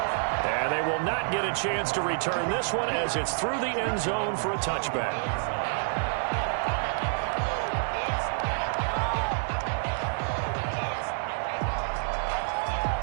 And they will not get a chance to return this one as it's through the end zone for a touchback.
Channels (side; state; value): left; silent; digital silence